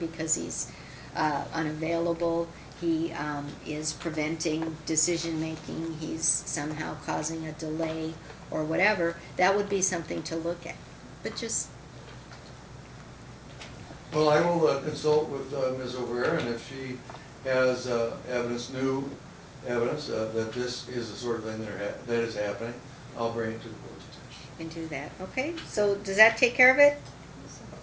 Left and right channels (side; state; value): both; identical; correlation 1.00